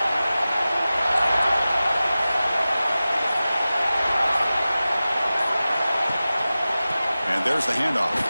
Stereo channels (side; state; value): both; inverted; correlation -0.96